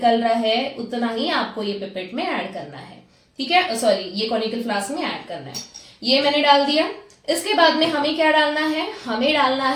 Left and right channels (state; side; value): identical; both; correlation 1.00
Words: रहा है, उतना ही आपको ये पिपेट में ऐड करना है। ठीक है, सॉरी, ये कॉनिकल फ्लास्क में ऐड करना है। ये मैंने डाल दिया। इसके बाद में हमें क्या डालना है, हमें डालना